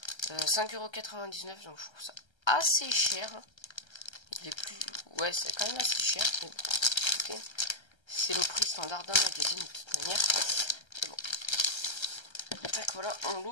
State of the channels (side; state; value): right; late; 1.3 ms